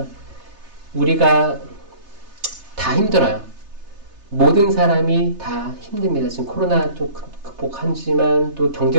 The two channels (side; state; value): left; late; 3.3 ms